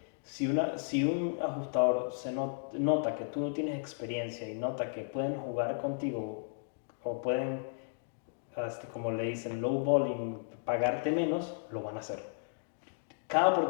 si un ajustador nota que tú no tienes experiencia y nota que pueden jugar contigo o pueden, como le dicen, low balling, pagarte menos, lo van a hacer. Cada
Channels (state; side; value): silent; right; digital silence